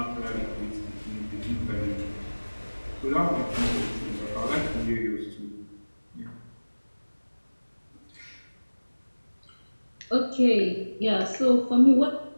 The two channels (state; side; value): inverted; both; correlation -1.00